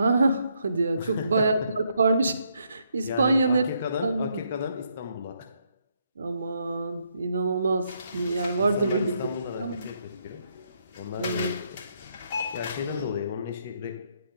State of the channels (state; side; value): inverted; both; correlation -0.75